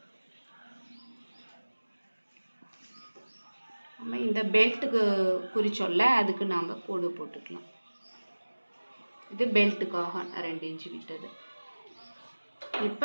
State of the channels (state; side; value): inverted; both; correlation -1.00